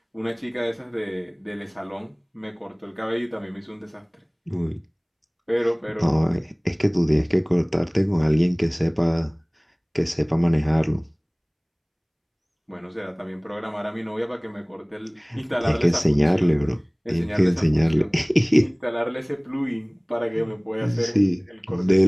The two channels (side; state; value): both; identical; correlation 1.00